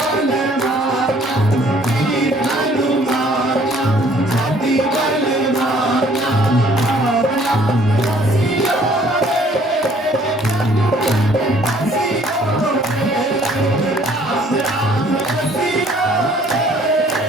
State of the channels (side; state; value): both; normal; correlation 0.59